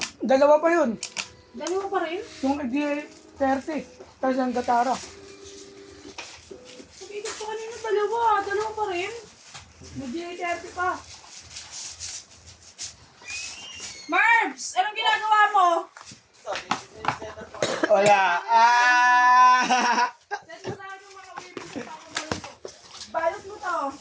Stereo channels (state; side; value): identical; both; correlation 1.00